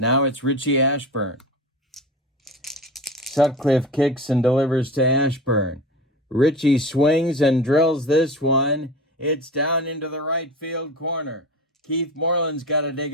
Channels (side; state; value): both; normal; correlation 0.31